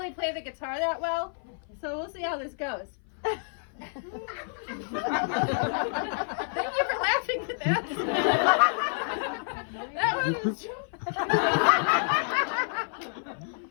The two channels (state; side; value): silent; right; 56 dB below the other